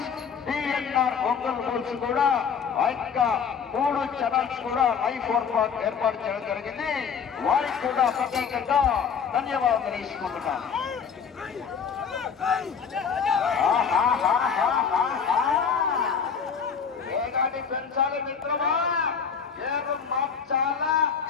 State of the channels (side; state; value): right; quieter; 6.6 dB